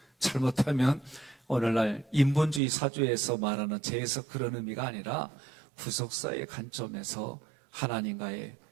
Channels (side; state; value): left; drops out; at 2.6 s